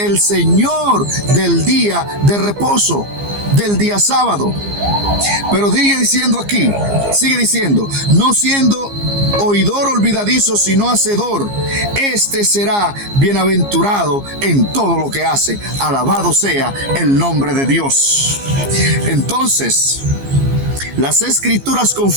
Señor del día de reposo, del día sábado. Pero sigue diciendo: no siendo oidor olvidadizo, sino hacedor, este será bienaventurado en todo lo que hace. Alabado sea el nombre de Dios. Entonces, las Escrituras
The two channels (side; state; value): left; late; 15 ms